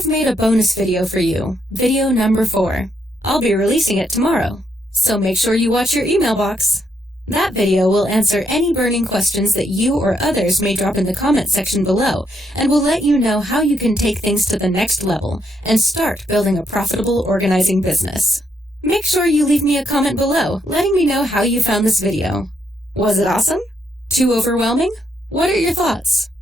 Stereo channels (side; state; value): both; normal; correlation 0.76